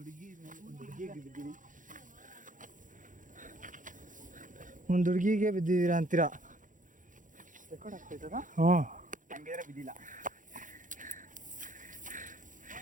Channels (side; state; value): left; late; 0.38 ms